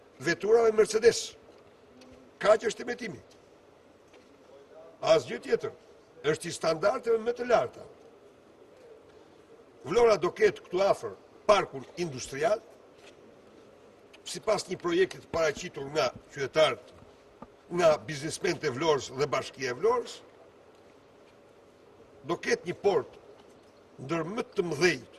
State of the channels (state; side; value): identical; both; correlation 1.00